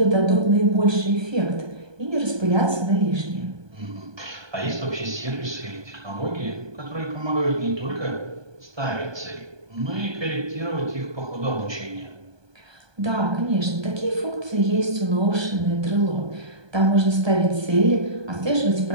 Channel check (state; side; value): late; left; 1.2 ms